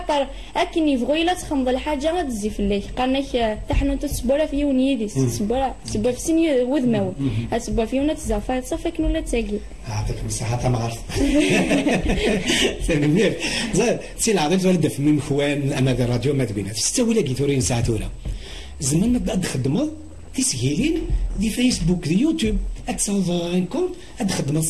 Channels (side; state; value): both; identical; correlation 1.00